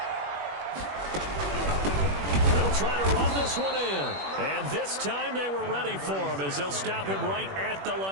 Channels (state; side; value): late; left; 21 ms